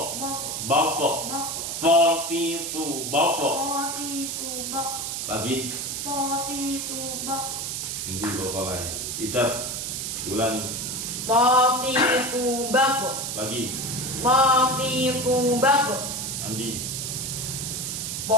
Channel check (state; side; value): noise; right; hiss, 3 dB below the sound